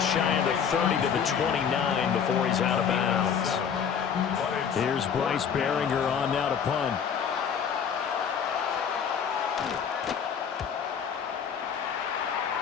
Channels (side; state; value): right; quieter; 7.4 dB